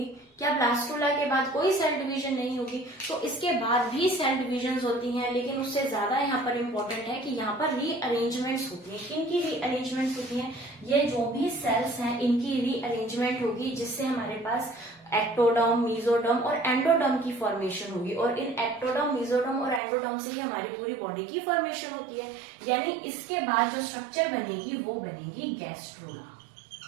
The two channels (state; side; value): drops out; left; at 19.8 s